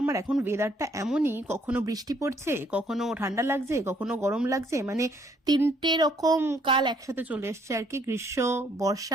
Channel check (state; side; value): normal; both; correlation 0.66